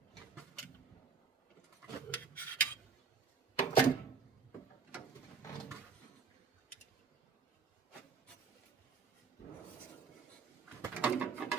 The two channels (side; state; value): left; quieter; 5.7 dB